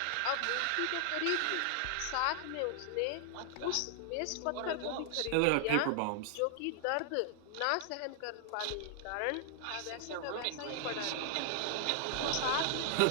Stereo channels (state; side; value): different; both; correlation 0.00